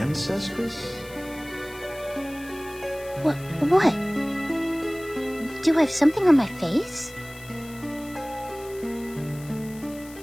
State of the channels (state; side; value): noise; left; hiss, 20 dB below the sound